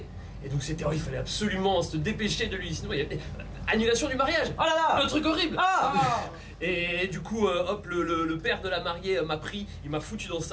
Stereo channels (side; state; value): both; identical; correlation 1.00